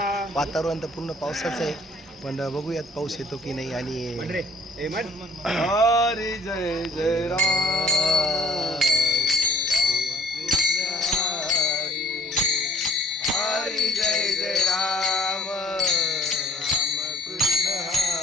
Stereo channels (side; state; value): both; normal; correlation 0.55